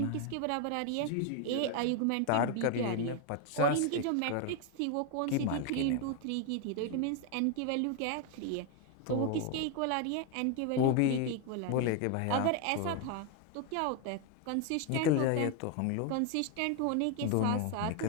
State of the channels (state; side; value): different; both; correlation 0.01